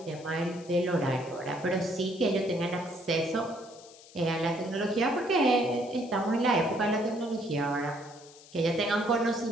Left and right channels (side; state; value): left; noise; hiss, 22 dB below the sound